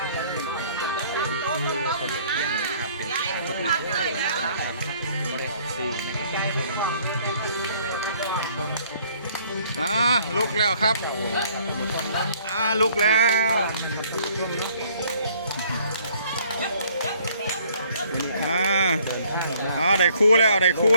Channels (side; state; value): both; inverted; correlation -0.60